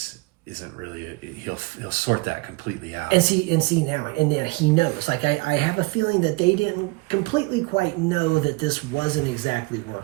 isn't really he'll sort that completely out. And see now he knows. Like I have a feeling that they didn't completely quite know that this wasn't exactly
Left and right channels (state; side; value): quieter; left; 25.1 dB